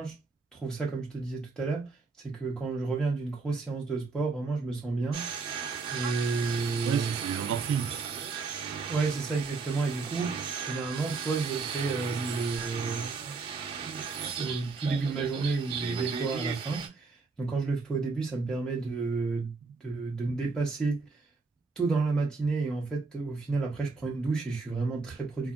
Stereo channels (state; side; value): quieter; left; 4.2 dB